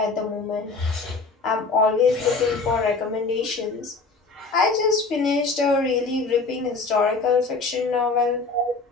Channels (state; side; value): quieter; right; 4.0 dB